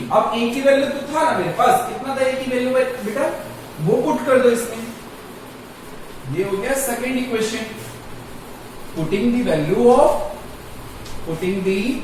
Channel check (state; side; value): identical; both; correlation 1.00